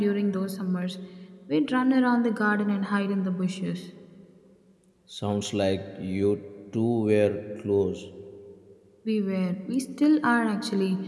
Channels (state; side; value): identical; both; correlation 1.00